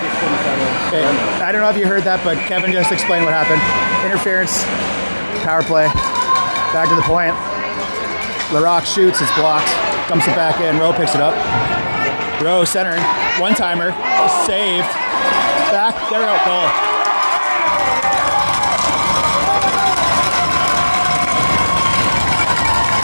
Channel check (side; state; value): both; inverted; correlation -1.00